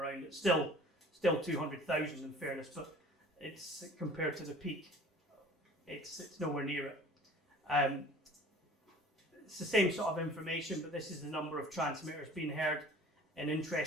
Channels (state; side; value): normal; both; correlation 0.47